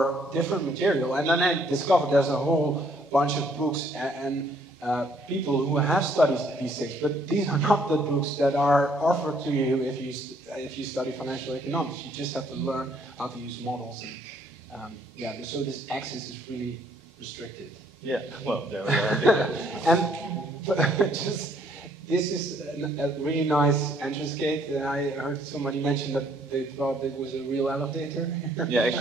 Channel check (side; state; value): both; normal; correlation 0.65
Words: different material, and then I discovered there's a whole bunch of books and people who have studied these things, but these are not the books that are offered to you if you study financial economics. You just have to learn how to use models, and so this access is really restricted. Yeah, well, there we are. And this is a really nice entrance gate. I heard somebody mention that they thought it was a real elevator. Yeah,